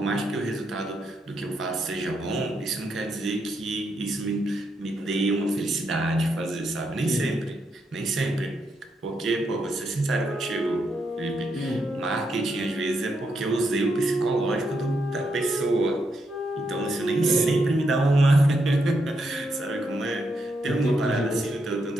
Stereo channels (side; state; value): both; normal; correlation 0.80